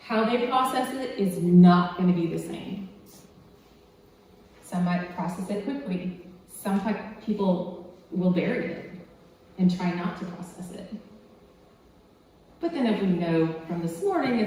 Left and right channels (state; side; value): identical; both; correlation 1.00